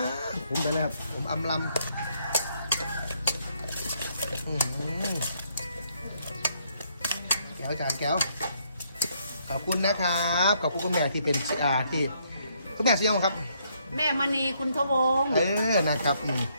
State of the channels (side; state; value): both; inverted; correlation -0.71